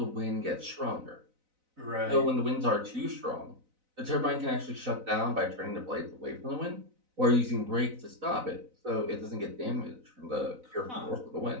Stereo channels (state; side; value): late; left; 4.0 ms